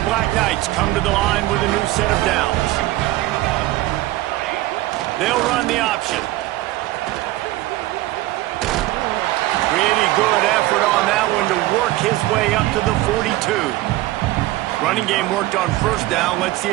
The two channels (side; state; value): left; quieter; 17.2 dB